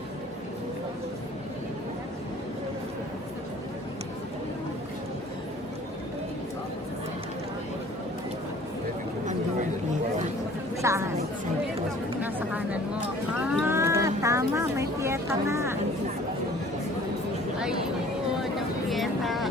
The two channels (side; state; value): both; normal; correlation 0.51